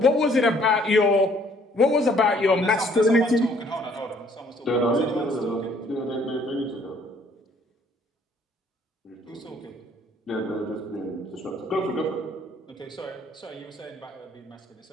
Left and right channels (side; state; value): both; normal; correlation 0.62